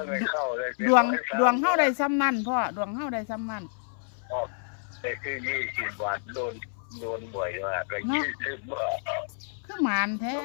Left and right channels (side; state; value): right; silent; 59 dB below the other